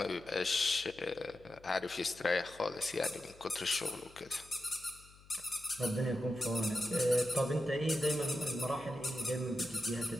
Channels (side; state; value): left; noise; hum, 24 dB below the sound